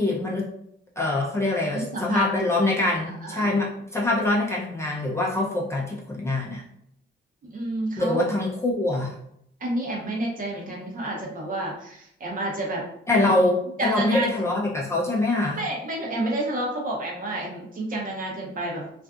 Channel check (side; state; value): both; normal; correlation 0.49